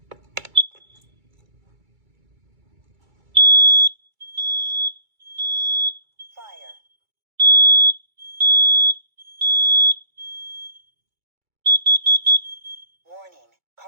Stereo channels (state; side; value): late; left; 2.3 ms